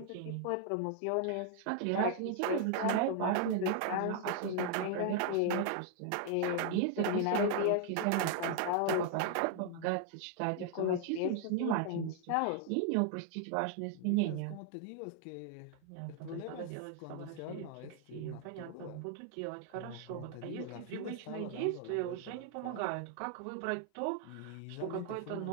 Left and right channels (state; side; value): different; both; correlation 0.00